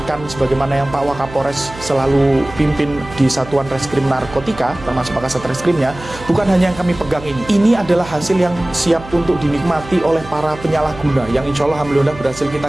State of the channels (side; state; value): right; noise; hum, 15 dB below the sound